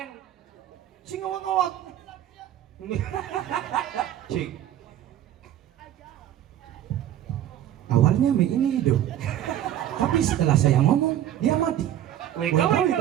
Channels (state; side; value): quieter; left; 11.6 dB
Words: Sing ngawak-ngawak. Cik. Awalnya Mei ini hidup. Tapi setelah saya ngomong, dia mati.